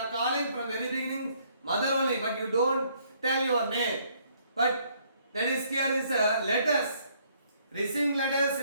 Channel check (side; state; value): both; inverted; correlation -0.66